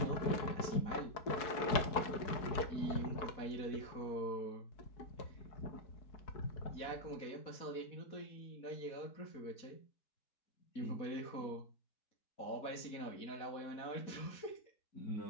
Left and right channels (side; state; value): right; late; 4.7 ms